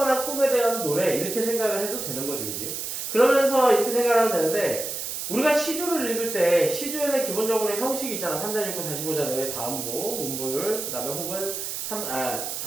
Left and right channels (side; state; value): right; noise; hiss, 5 dB below the sound